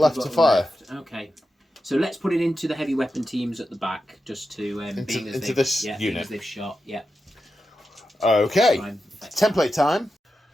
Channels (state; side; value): normal; both; correlation 0.90